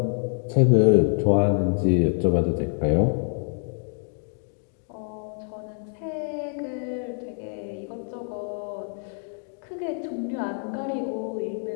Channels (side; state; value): right; silent; 60 dB below the other